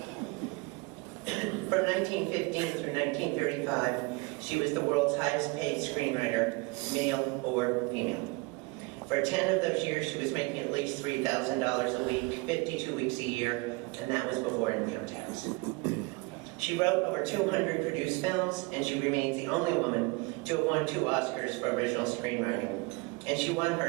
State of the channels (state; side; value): quieter; left; 26.4 dB